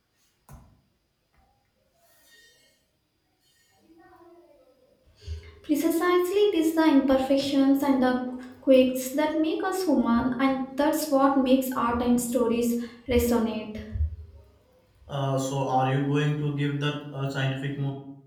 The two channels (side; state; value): both; identical; correlation 1.00